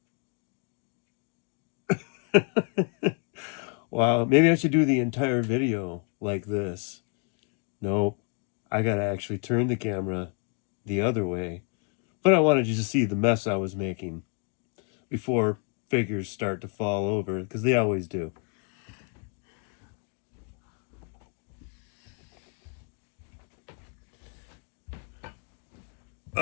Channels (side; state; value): right; quieter; 36.4 dB